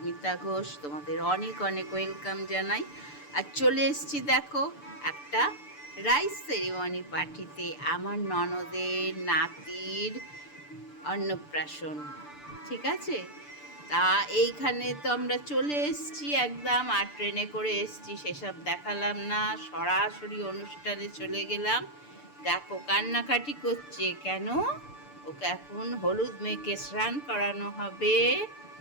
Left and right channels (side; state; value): right; late; 6.8 ms